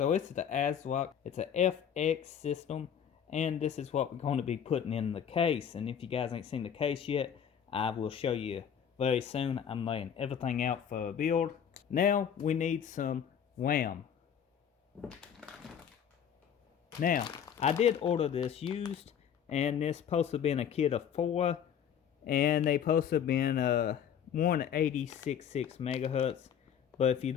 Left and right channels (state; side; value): quieter; right; 8.4 dB